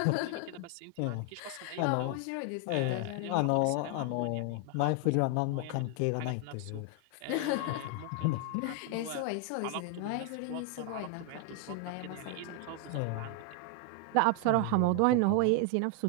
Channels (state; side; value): different; both; correlation 0.00